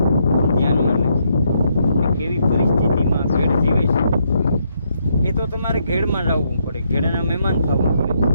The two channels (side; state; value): both; inverted; correlation -0.76